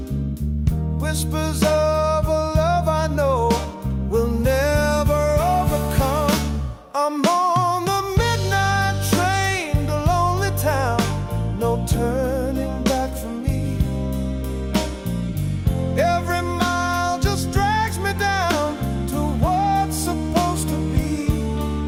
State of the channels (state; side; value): identical; both; correlation 1.00